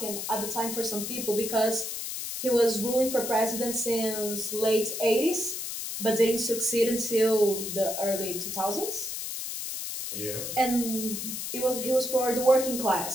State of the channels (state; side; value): noise; left; hiss, 5 dB below the sound